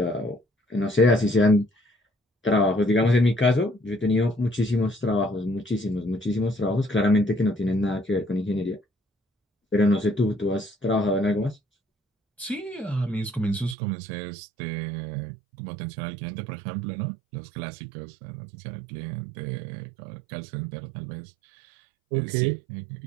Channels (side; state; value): left; drops out; at 13.8 s